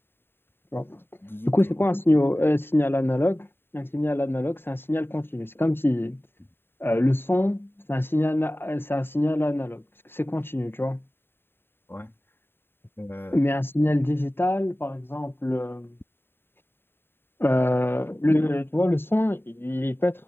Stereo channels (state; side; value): late; right; 0.11 ms